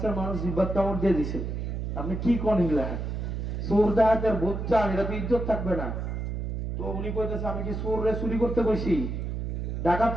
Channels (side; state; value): right; noise; hum, 3 dB below the sound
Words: মানুষ জিব্বাত কামড় দিয়ে দিছে, আপনি কি কোন হিলা চোর ডাকাতের ভোট চান, এটা তো ইজ্জত থাকবে না। তো উনি কইতেছে, আমি কি চোররে চুরি করতে কইছি,